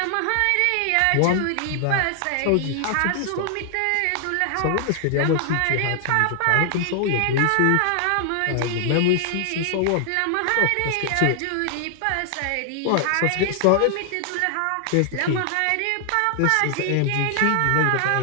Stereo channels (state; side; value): different; both; correlation 0.00